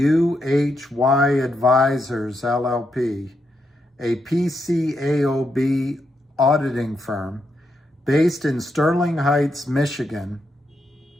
Advisors LLP, a PCAOB auditing firm based in Sterling Heights, Michigan.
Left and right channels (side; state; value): both; normal; correlation 0.81